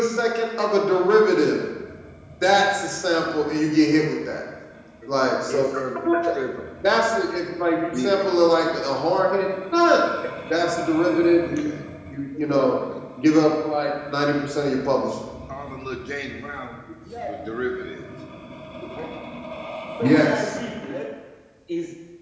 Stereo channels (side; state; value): both; identical; correlation 1.00